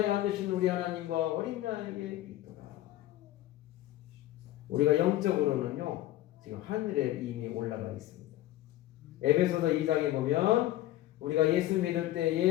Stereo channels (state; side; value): quieter; right; 14.8 dB